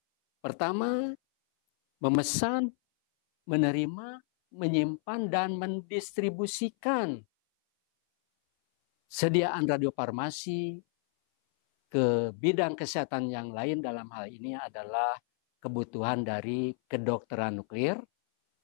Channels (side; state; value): right; silent; 57 dB below the other